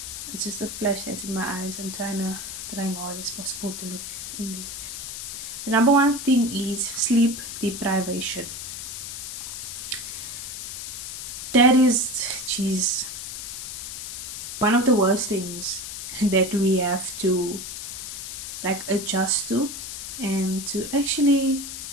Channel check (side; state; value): left; noise; hiss, 7 dB below the sound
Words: It's just a flash that's in my eyes. I'm trying hard as possible to look in there. The number one thing is sleep deprivation. That is, geez, one of the worst things that we have to like adjust to and to actually